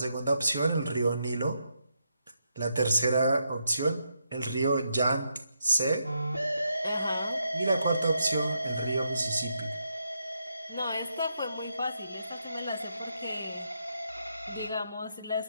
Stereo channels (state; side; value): inverted; both; correlation -0.81